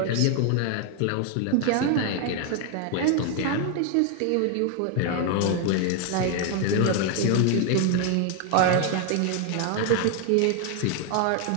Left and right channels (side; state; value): both; different; correlation 0.01